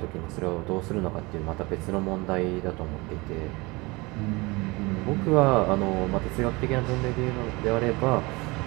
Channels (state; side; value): quieter; left; 24.4 dB